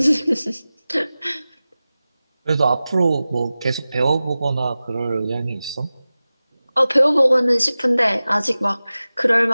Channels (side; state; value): both; inverted; correlation -0.96